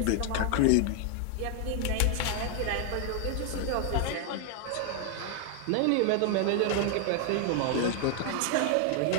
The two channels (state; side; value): different; both; correlation 0.00